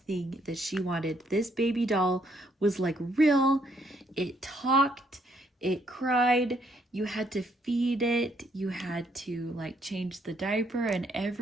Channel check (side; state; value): both; normal; correlation 0.71